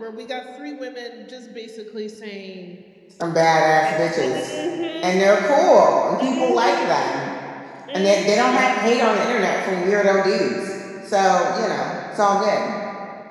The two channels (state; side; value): identical; both; correlation 1.00